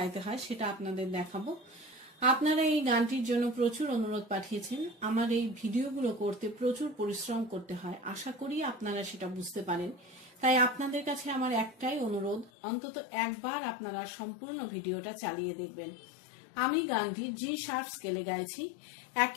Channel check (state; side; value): drops out; right; at 12.5 s